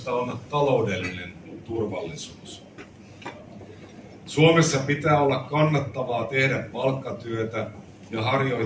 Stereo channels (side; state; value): both; identical; correlation 1.00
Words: on taloudellinen turvallisuus. Suomessa pitää olla kannattavaa tehdä palkkatyötä ja